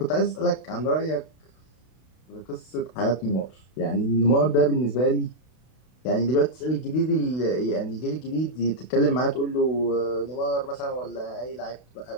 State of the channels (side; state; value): right; late; 32 ms